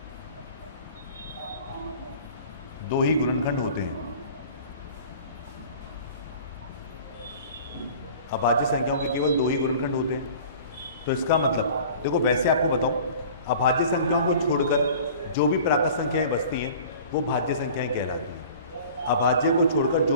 2 ही गुणनखंड होते हैं। अभाज्य संख्याओं के केवल 2 ही गुणनखंड होते हैं। तो इसका मतलब देखो, वैसे आपको बताऊं, अभाज्य संख्याओं को छोड़कर जो भी प्राकृत संख्याएं बचती हैं वो भाज्य संख्याएं कहलाती हैं। अभाज्य को छोड़कर जो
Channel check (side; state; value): both; inverted; correlation -0.44